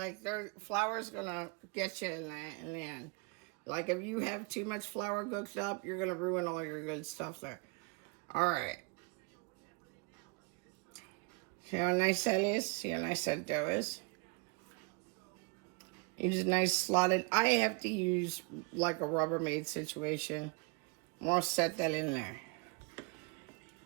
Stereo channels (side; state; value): left; quieter; 29.6 dB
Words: flour's going to get you in the end. Like if you have too much flour cooked up, you're going to ruin all your good stuff there. All right. See how nice that is? See how nice that dough is? Use a nice slotted. I have to use like a Rubbermaid situation. I'm going to set that in there.